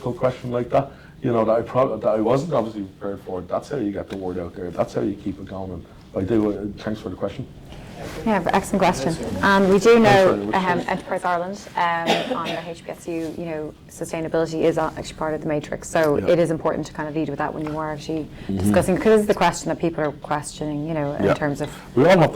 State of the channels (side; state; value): both; identical; correlation 1.00